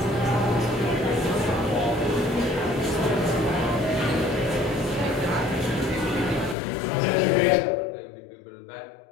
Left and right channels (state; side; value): drops out; right; at 6.6 s